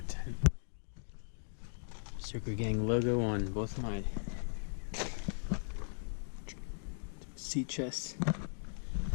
Berserker Gang logo on both of mine. Sea chests.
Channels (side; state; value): right; silent; digital silence